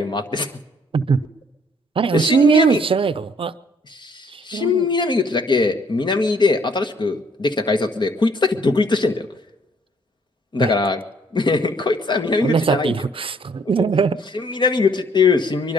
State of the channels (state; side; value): normal; both; correlation 0.63